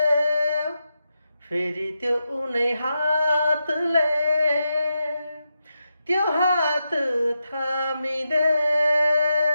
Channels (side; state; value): both; inverted; correlation -0.87